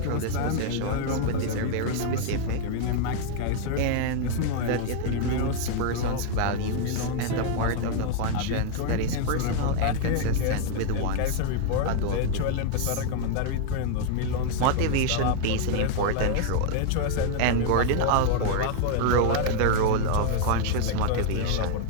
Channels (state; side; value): different; both; correlation 0.00